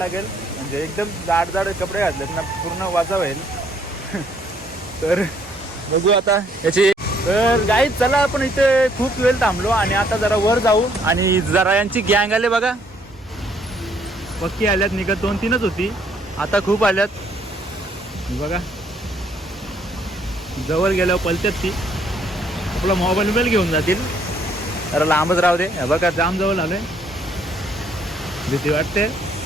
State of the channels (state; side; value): normal; both; correlation 0.66